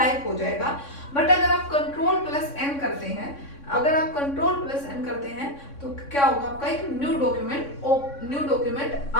हो जाएगा। बट अगर आप कंट्रोल प्लस एन करते हैं, अगर आप कंट्रोल प्लस एन करते हैं तो क्या होगा, आपका एक न्यू डॉक्यूमेंट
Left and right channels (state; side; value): late; right; 3.6 ms